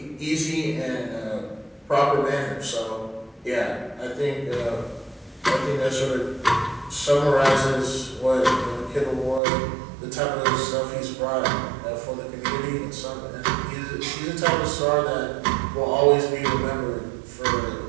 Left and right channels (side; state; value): left; drops out; at 9.4 s